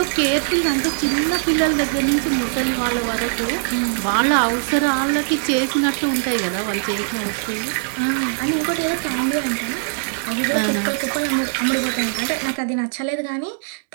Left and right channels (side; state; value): left; silent; 65 dB below the other